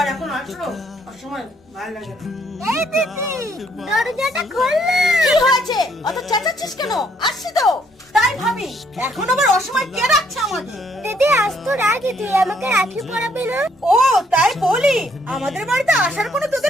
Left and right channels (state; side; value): normal; both; correlation 0.68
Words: এখন আসলো অসময় ভালো লাগে না। এই দিদি দরজাটা খোল না। কি হয়েছে অত চেঁচাচ্ছিস কেন? আসছি তো। তাই ভাবি এখন আবার অসময় কে রাখছে আমাদের? দিদি আজ তো রাখি, তুই আমাকে রাখি পরাবি না? ও তাই বলি, আমাদের বাড়িতে আসার কোনো